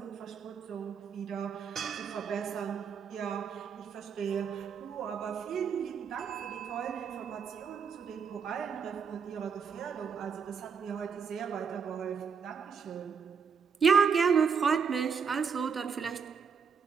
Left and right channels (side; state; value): left; quieter; 6.4 dB